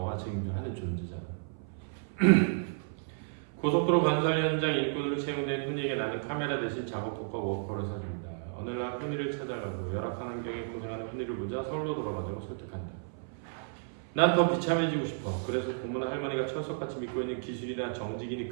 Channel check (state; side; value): silent; left; 56 dB below the other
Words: 하는 존재잖아. 고속도로 건설 현장 일꾼으로 채용된 훈이에게 나는 카메라 대신 작업복과 워커를 사줍니다. 어느 날 훈이를 찾아가고 열악한 환경에 고생하는 훈이를 보자 서울로 돌아가자고 설득한다. 난 더 비참해지고 싶어. 그래서 고모나 할머니가 철석같이 믿고 있는 기술이나 정직이니